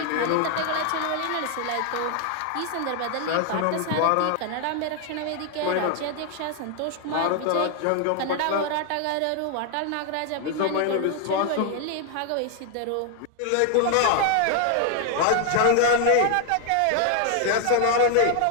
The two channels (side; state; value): both; different; correlation 0.00